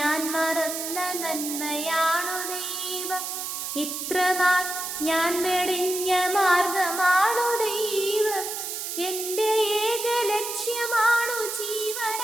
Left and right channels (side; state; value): right; noise; hiss, 5 dB below the sound